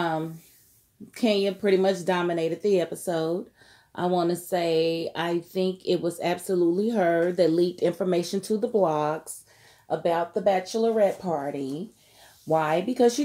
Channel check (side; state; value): both; identical; correlation 1.00